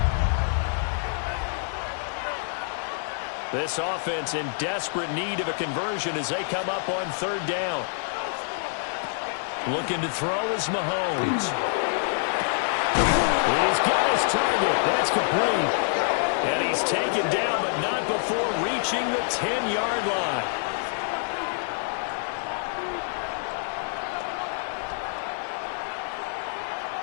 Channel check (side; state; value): right; silent; digital silence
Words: This offense in desperate need of a conversion as they come up on 3rd down. Looking to throw is Mahomes. He's got his target. That's complete. And he's taken down, but not before reaching the 10-yard line.